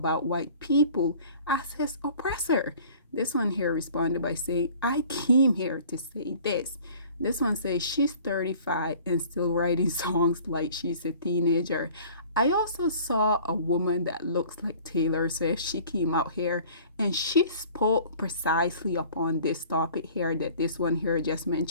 white people as his oppressor. This one here responded by saying, I came here to say this. This one says she's 35 and still writing songs like she's a teenager. I also saw a woman that looks like Taylor Swift. She came out here and she spoke precisely upon this topic here that this one here just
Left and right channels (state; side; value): inverted; both; correlation -0.49